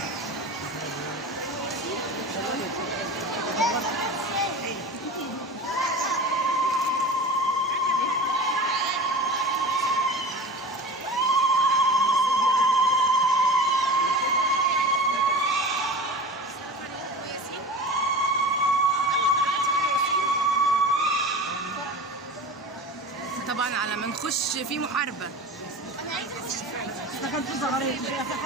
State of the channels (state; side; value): normal; both; correlation 0.33